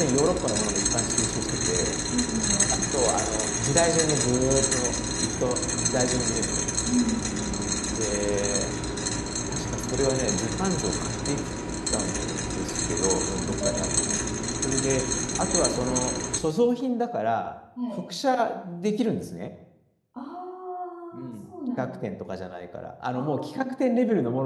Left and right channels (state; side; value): identical; both; correlation 1.00